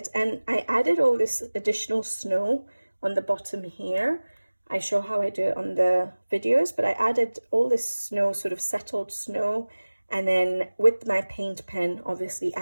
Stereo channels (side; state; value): both; inverted; correlation -1.00